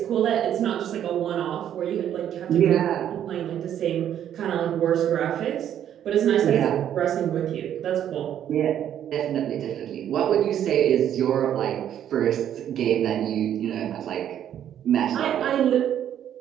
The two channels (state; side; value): quieter; left; 10.3 dB